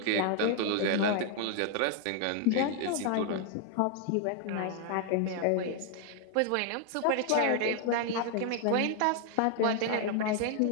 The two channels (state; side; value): different; both; correlation 0.00